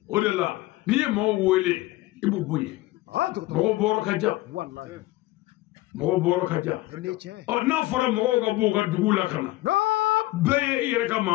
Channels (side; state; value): right; quieter; 18.5 dB